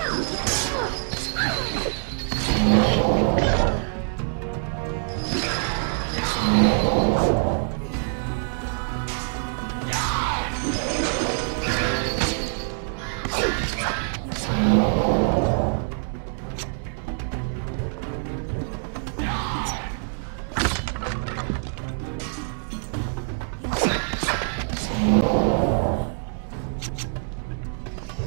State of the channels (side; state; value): left; silent; 62 dB below the other